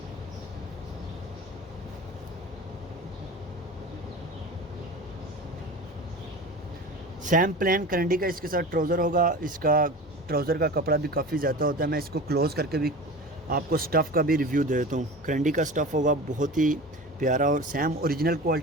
सैम प्लेन करंडी का इसके साथ ट्राउज़र होगा। इसका ट्राउज़र का कपड़ा भी काफ़ी ज़्यादा होता है। मैं इसको क्लोज़ करके भी आपको स्टफ़ का भी रिव्यू दे देता हूँ। करंडी का स्टफ़ होगा बहुत ही प्यारा, और सैम ओरिजिनल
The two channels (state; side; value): normal; both; correlation 0.34